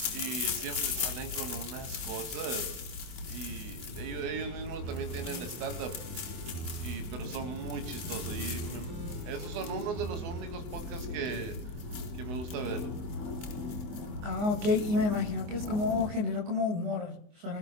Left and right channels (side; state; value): left; late; 24 ms